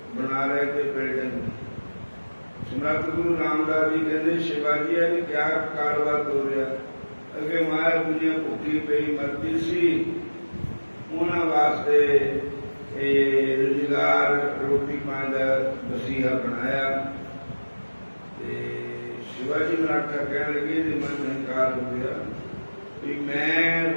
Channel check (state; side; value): inverted; both; correlation -1.00